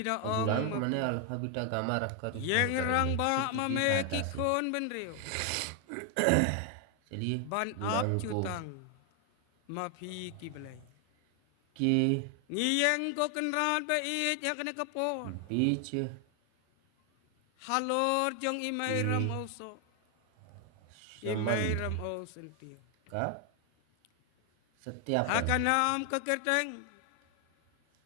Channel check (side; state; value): both; different; correlation 0.00